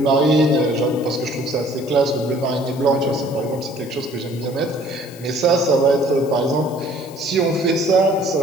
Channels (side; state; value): left; noise; hiss, 21 dB below the sound